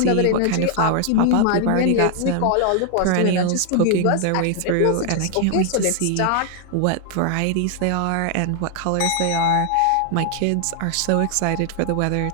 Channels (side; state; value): both; different; correlation 0.00